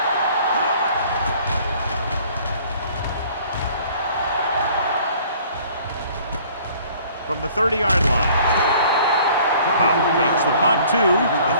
From the 30-yard line, Powell takes the punt to the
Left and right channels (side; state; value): both; inverted; correlation -0.54